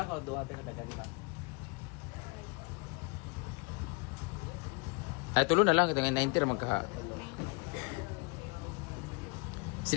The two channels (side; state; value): right; quieter; 30.8 dB